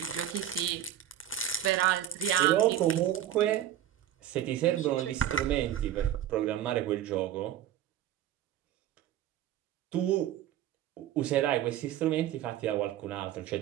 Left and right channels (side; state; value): left; quieter; 11.4 dB